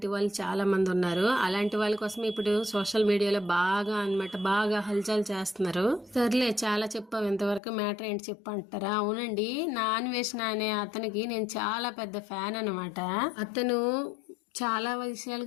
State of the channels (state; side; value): drops out; right; at 7.6 s